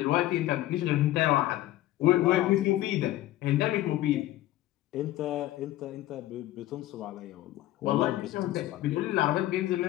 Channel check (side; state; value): right; quieter; 15.1 dB